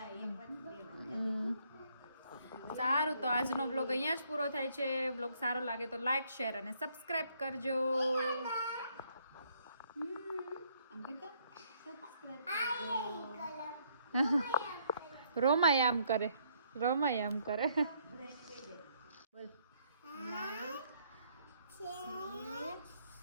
એક વાર બે વાર. સારું તો આજનો વ્લોગ અહીંયા જ પૂરો થાય છે. વ્લોગ સારો લાગે તો લાઈક શેર અને સબસ્ક્રાઇબ કરજો. આમ કરતા સબસ્ક્રાઇબ કરજો. રોમાય આમ કરે. રોમાય આમ કરે. બોલ.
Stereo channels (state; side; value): inverted; both; correlation -0.69